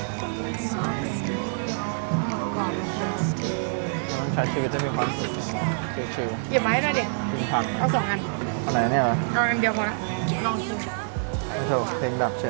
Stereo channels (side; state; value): left; silent; 61 dB below the other